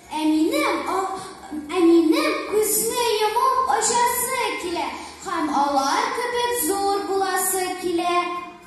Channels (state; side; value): identical; both; correlation 1.00